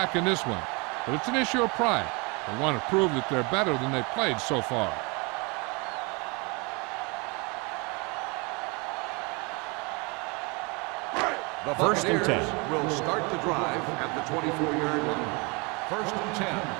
in this one, but it's an issue of pride. They want to prove that they're better than they've played so far. The 1st and 10. Will start the drive at the 24-yard line. 1st and 10.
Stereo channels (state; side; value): quieter; left; 29.5 dB